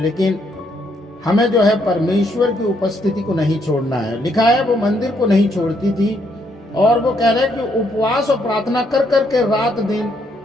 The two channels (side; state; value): both; normal; correlation 0.73